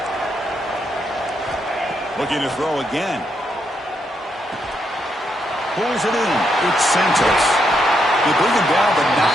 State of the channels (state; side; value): normal; both; correlation 0.79